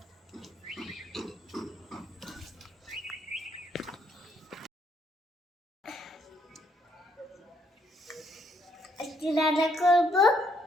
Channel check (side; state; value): both; normal; correlation 0.70